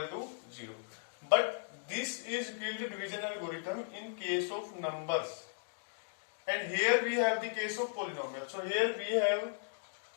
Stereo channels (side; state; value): right; silent; digital silence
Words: to 0. But this is Euclid division algorithm in case of numbers, and here we have the case of polynomial. So here we have